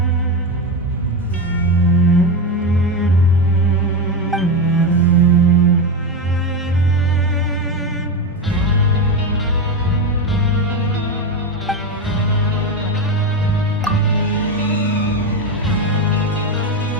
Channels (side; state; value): both; normal; correlation 0.14